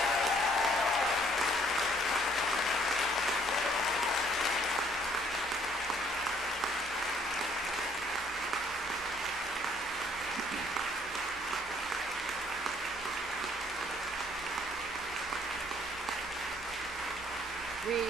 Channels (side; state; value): both; normal; correlation 0.62